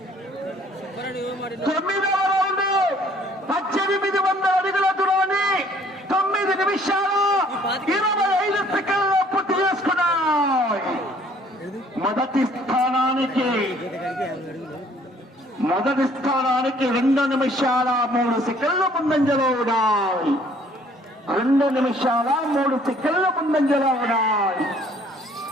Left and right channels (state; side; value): normal; both; correlation 0.59